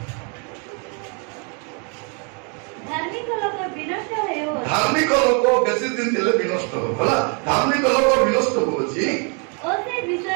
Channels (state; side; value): quieter; left; 36.4 dB